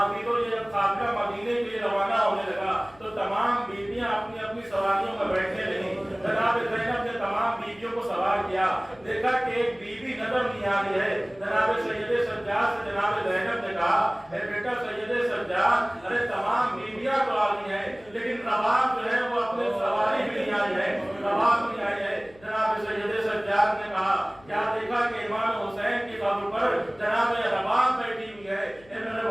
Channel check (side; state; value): left; noise; hum, 26 dB below the sound